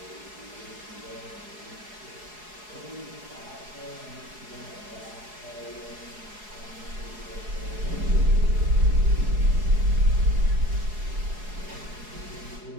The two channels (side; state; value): left; late; 4.7 ms